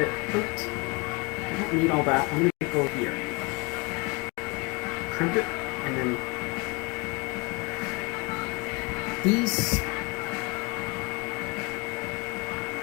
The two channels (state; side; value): quieter; right; 26.6 dB